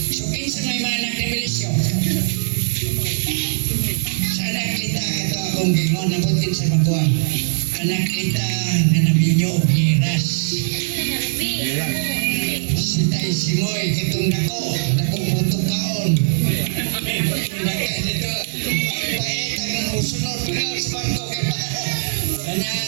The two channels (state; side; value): silent; left; digital silence